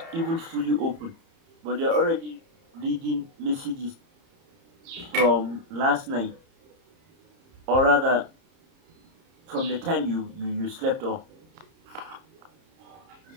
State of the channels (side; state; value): left; late; 30 ms